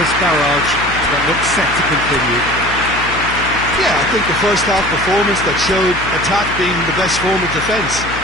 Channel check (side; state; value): left; noise; hum, 11 dB below the sound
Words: barrage that looks set to continue. Yeah, I think the first half performance that showed attack being the best form of defence.